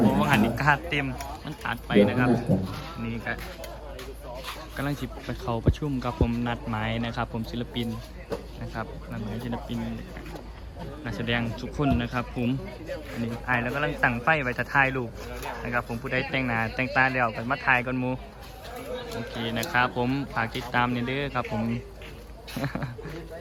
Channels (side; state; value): both; identical; correlation 1.00